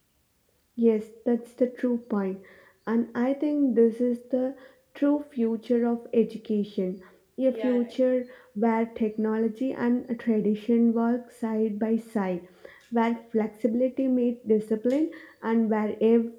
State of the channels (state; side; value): identical; both; correlation 1.00